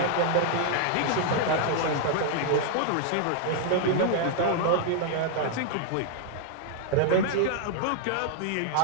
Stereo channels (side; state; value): both; different; correlation 0.00